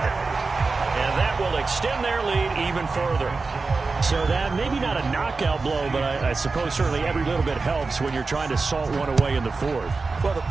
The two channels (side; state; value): left; quieter; 4.0 dB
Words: And that will extend their lead even further. So that, maybe not a knockout blow, but I suppose certainly every little bit helps when you're trying to salt one away in the 4th. Well, the